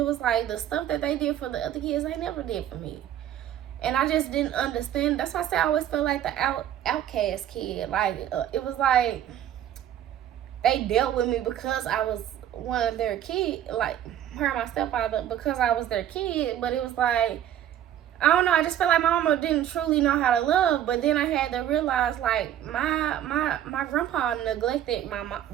was like the stuff that they did for the other kids, they never did for me. And I just didn't understand. That's why I say I always felt like the outcast kid. Like, it was like they dealt with me because I was one of their kids, like her and my stepfather, because I was their kid. But it was like, I don't know, I just felt like my mama didn't truly know how to love. But then I had to realize, like, my grandpa neglected my mom.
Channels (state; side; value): quieter; left; 11.1 dB